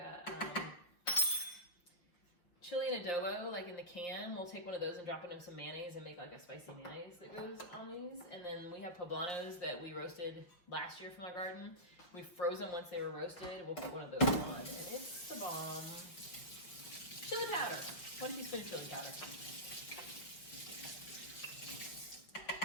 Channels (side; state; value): right; late; 5.8 ms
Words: chili and adobo, like in the can. We'll take one of those and drop it in some mayonnaise and make like a spicy mayonnaise that goes on these. And then we have poblanos that we roasted last year from our garden. We froze them once they were roasted. We'll put one of those on, and it's the bomb. Chili powder, 1 teaspoon of chili powder.